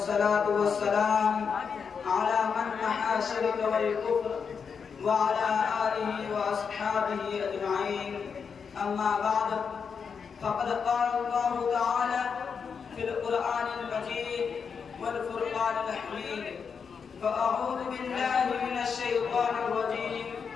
والسلام على من محى الشرك والكفر وعلى آله وأصحابه أجمعين. أما بعد، فقد قال الله تعالى في القرآن المجيد والفرقان الحميد: فأعوذ بالله من الشيطان الرجيم،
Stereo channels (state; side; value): quieter; right; 6.1 dB